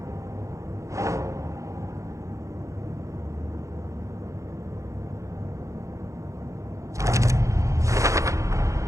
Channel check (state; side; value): late; left; 0.15 ms